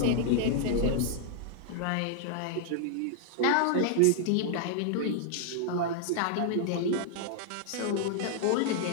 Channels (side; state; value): both; different; correlation -0.01